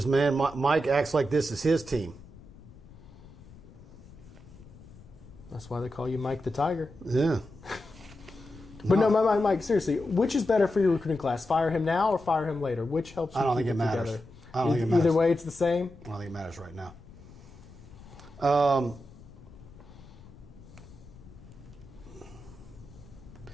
man, Mike acts like this is his team. That's why they call you Mike the Tiger. Yeah. But no, Mike, seriously, which is better for your recruiting class? Fire him now or fire him later? Which helps you keep it together? I don't think it matters. Either way, it's the same? I don't think it matters right now.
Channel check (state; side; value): noise; left; rumble, 20 dB below the sound